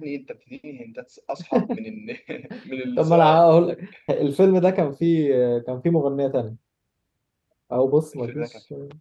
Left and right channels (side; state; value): both; identical; correlation 1.00